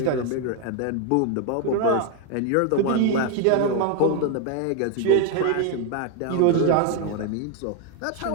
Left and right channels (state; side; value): different; both; correlation 0.01